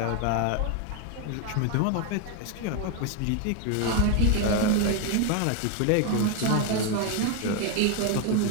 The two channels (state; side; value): different; both; correlation 0.01